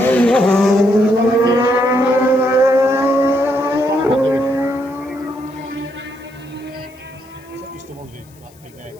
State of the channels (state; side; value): noise; left; hiss, 29 dB below the sound